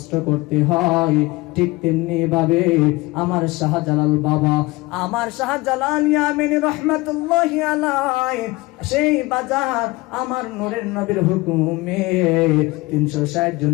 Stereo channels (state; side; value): quieter; right; 22.0 dB